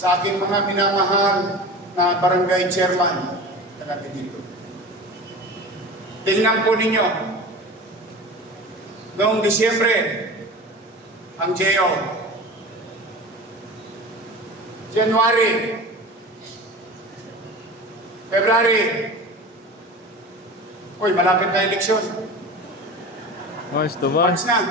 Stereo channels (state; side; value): normal; both; correlation 0.34